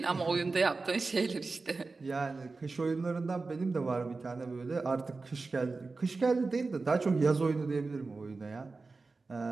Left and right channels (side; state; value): left; quieter; 3.9 dB